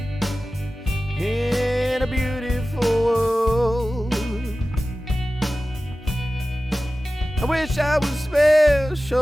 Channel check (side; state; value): both; normal; correlation 0.96